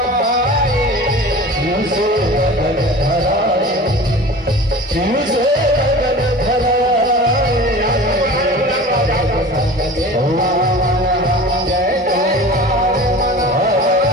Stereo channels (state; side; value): normal; both; correlation 0.38